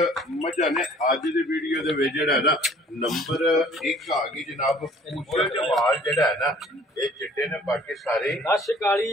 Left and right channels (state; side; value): normal; both; correlation 0.54